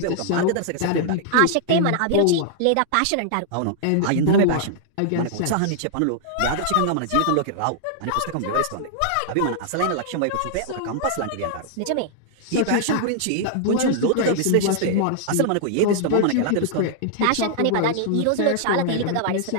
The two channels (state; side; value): different; both; correlation -0.01